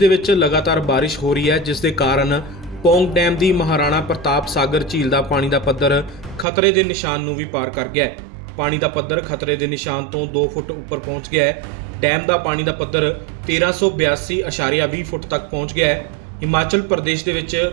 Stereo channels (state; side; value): drops out; left; at 6.5 s